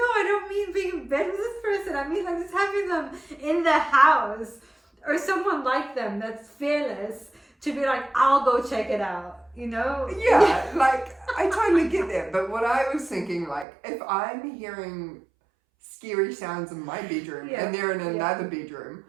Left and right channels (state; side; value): drops out; left; at 13.7 s